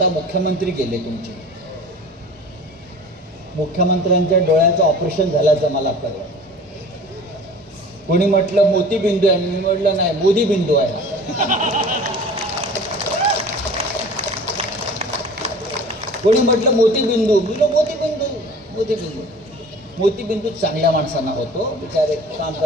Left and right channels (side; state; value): both; normal; correlation 0.42